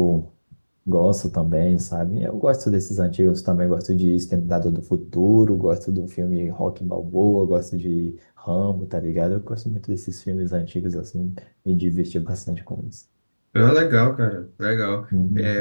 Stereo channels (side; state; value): both; inverted; correlation -1.00